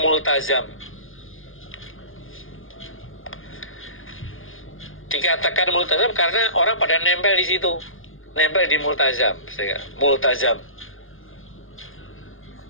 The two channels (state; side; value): late; right; 0.59 ms